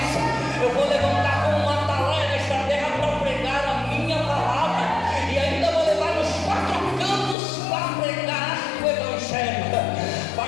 eu vou levantar como uma atalaia nesta terra para pregar a minha palavra. E ainda vou levar nos 4 cantos para pregar o Evangelho. Pai,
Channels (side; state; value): right; drops out; at 7.4 s